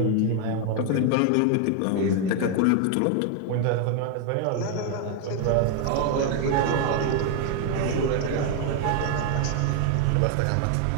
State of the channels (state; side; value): different; both; correlation 0.00